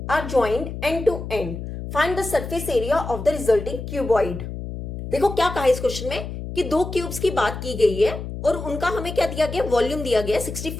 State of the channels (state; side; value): noise; left; hum, 8 dB below the sound